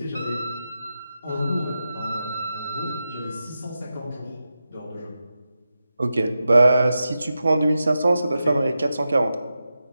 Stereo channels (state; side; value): inverted; both; correlation -0.90